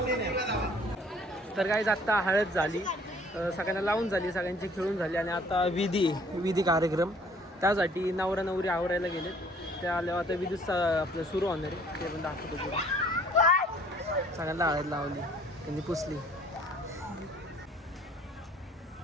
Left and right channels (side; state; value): both; normal; correlation 0.57